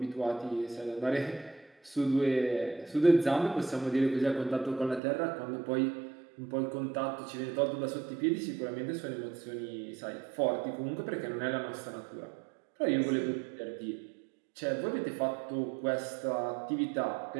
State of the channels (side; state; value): left; drops out; at 5.0 s